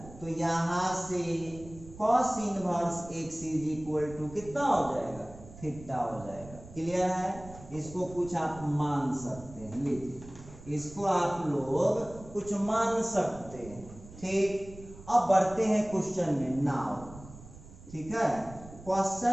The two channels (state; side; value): noise; right; rumble, 17 dB below the sound